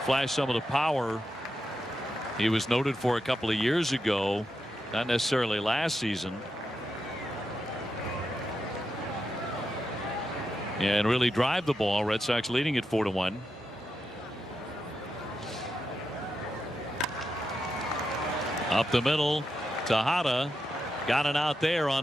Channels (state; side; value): normal; both; correlation 0.86